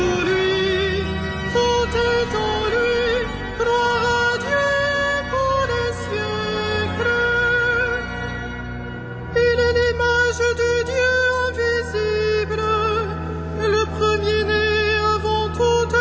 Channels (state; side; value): identical; both; correlation 1.00